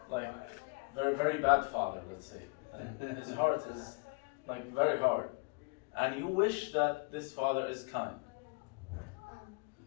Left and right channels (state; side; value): quieter; right; 30.7 dB